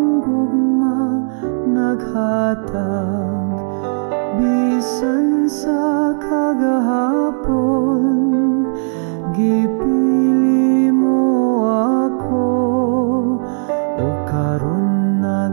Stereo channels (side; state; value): left; silent; 63 dB below the other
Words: gugma naghatag. Bisan sa kagahapon, gipili mo ako, o karon